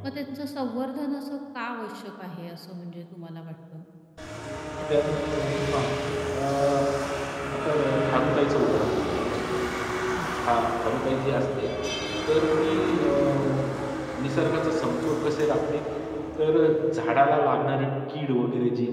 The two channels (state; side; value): identical; both; correlation 1.00